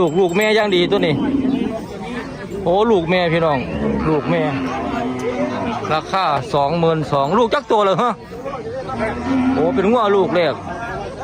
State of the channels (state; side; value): identical; both; correlation 1.00